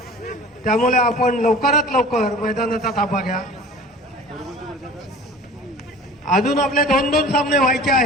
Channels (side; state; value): both; normal; correlation 0.42